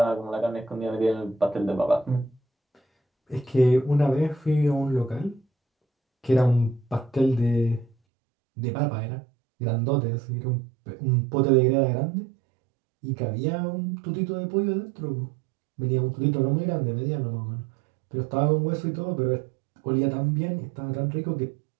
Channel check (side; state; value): left; drops out; at 7.9 s